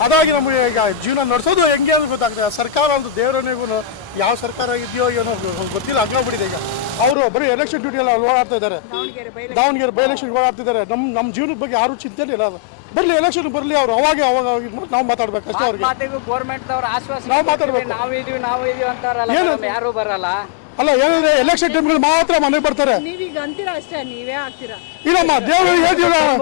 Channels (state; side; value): drops out; right; at 7.2 s